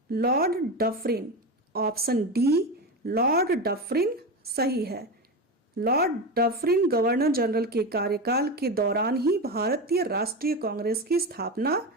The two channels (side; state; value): both; normal; correlation 0.20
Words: Lord Dufferin. Option D Lord Dufferin सही है। लॉर्ड डफरिन गवर्नर जनरल के कार्यकाल के दौरान ही भारतीय राष्ट्रीय कांग्रेस की स्थापना